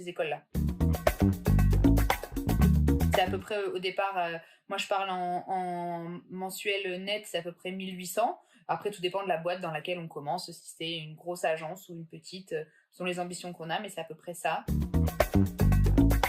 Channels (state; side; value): identical; both; correlation 1.00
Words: écoles-là. C'est à peu près au départ, moi je parle en mensuel net, c'est à peu près 1800. Après, tout dépend de la boîte dans laquelle on commence, si c'est une grosse agence ou une petite, selon les ambitions qu'on a, mais c'est à peu près ça.